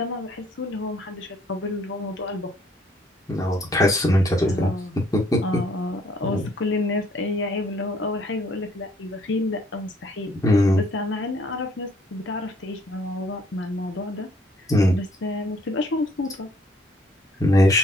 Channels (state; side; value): normal; both; correlation 0.63